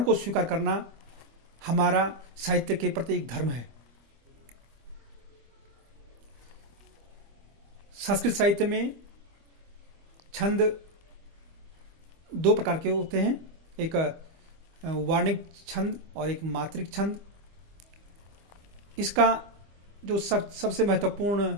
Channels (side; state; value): left; late; 25 ms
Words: को स्वीकार करना हमारा साहित्य के प्रति एक धर्म है। संस्कृत साहित्य में छंद 2 प्रकार के होते हैं, एक वार्णिक छंद और एक मात्रिक छंद। इसका जो सबसे महत्वपूर्ण